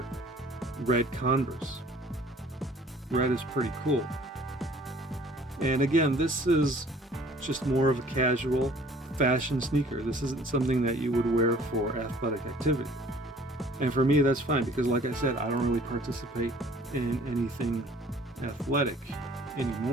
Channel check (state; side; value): normal; both; correlation 0.53